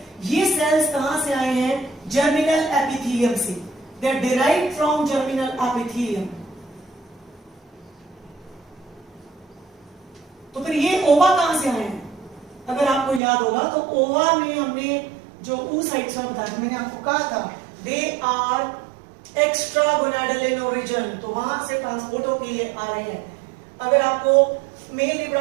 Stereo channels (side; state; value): left; drops out; at 13.2 s